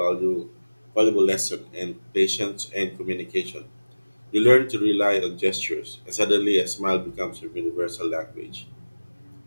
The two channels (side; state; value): both; inverted; correlation -1.00